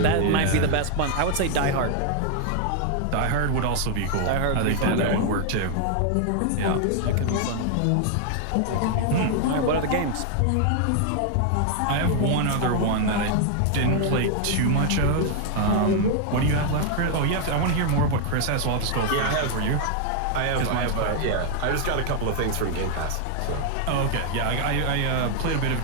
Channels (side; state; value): both; different; correlation 0.00